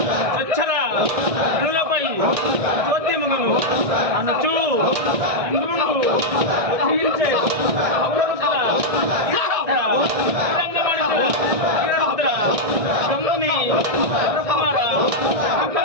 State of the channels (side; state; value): left; late; 1.6 ms